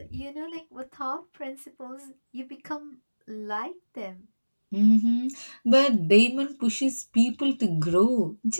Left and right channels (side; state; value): both; inverted; correlation -1.00